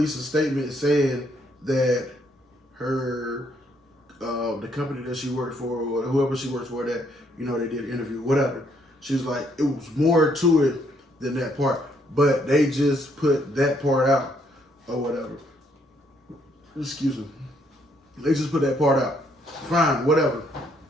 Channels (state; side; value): normal; both; correlation 0.70